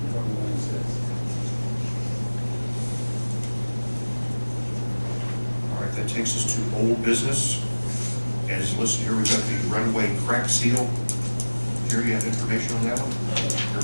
All right, that takes us to old business. As listed here, we've got the runway crack seal. Jerry, you have information on that one?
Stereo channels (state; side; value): inverted; both; correlation -1.00